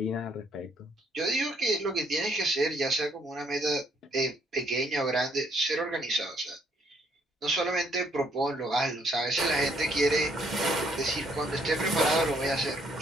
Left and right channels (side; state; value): both; normal; correlation 0.68